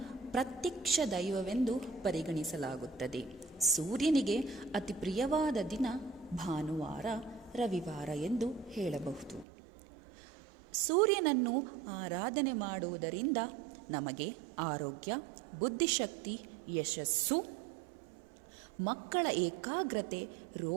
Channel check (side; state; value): left; drops out; at 9.5 s